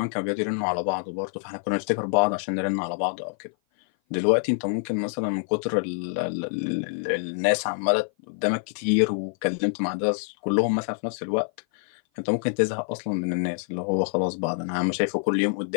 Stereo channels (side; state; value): right; silent; 56 dB below the other